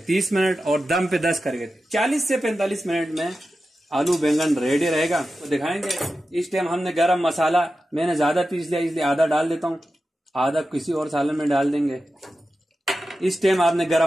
मिनट, और दम पे 10 करके 40 से 45 मिनट में आलू बैंगन रेडी रहेगा, तो दिखाएंगे। इस टाइम हमने गरम मसाला मैंने ज्यादा पीस लिया, इसलिए आधा डाल देता हूँ, आधा किसी और सालन में डाल देंगे। इस टाइम आपने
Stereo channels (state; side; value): normal; both; correlation 0.92